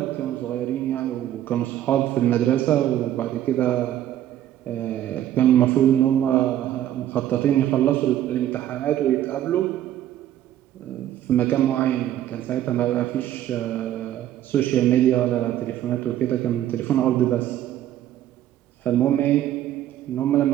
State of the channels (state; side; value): quieter; left; 12.1 dB